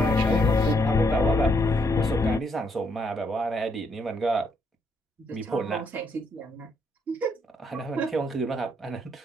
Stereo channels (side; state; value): both; normal; correlation 0.74